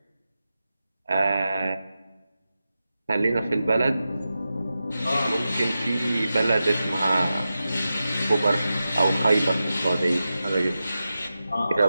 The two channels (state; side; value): inverted; both; correlation -0.92